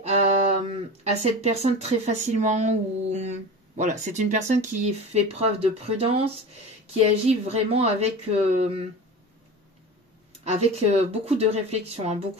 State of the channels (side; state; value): both; normal; correlation 0.32